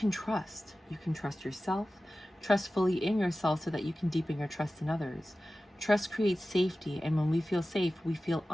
trust. You can trust yourself, trust fully in yourself so that you can deepen your trust in others. Trust creates safety, and when we feel safe, we feel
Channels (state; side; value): normal; both; correlation 0.95